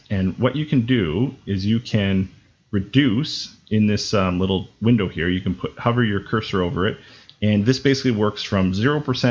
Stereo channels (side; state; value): both; identical; correlation 1.00